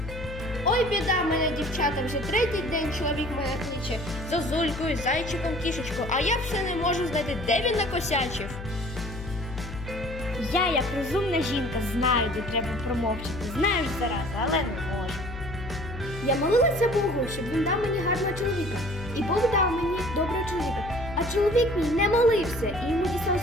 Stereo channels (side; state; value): left; noise; hum, 10 dB below the sound